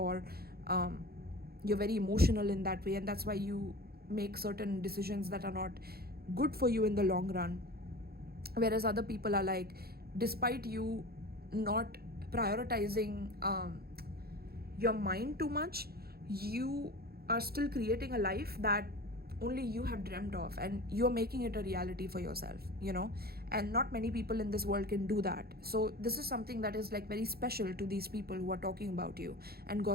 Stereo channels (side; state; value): left; late; 0.45 ms